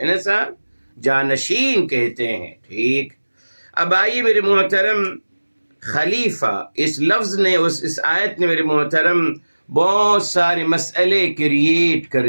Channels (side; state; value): both; inverted; correlation -1.00